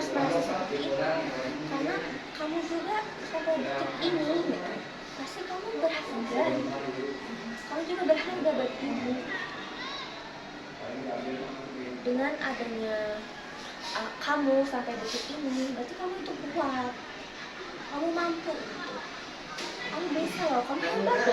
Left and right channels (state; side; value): identical; both; correlation 1.00